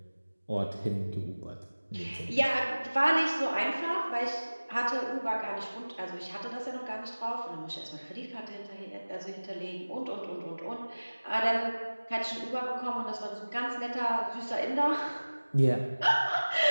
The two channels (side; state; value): both; inverted; correlation -1.00